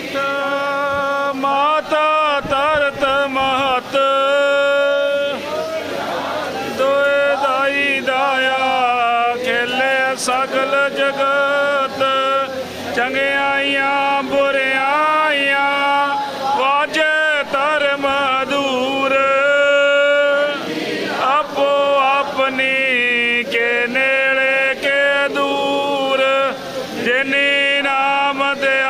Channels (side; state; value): both; identical; correlation 1.00